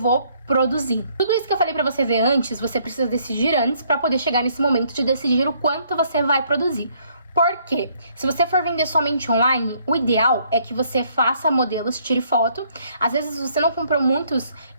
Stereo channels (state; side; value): inverted; both; correlation -0.67